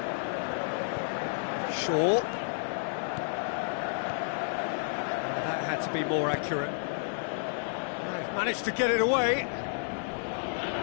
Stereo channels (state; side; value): silent; right; digital silence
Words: Shaw. That had to be more accurate. They've managed to get it away.